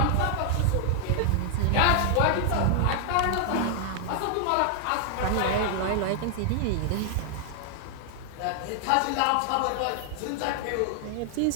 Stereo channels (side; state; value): both; different; correlation 0.00